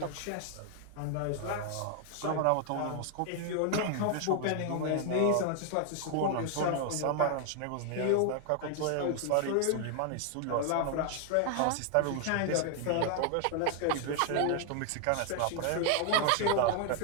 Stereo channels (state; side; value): different; both; correlation 0.00